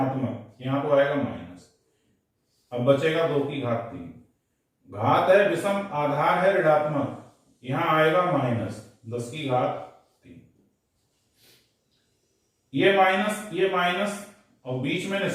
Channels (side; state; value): both; identical; correlation 1.00